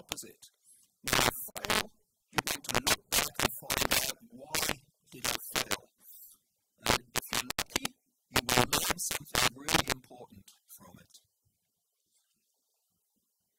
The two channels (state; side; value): identical; both; correlation 1.00